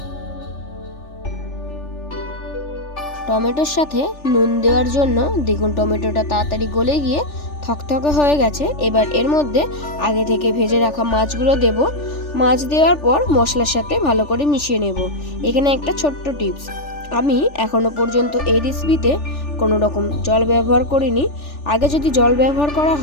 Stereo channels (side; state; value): right; late; 3.4 ms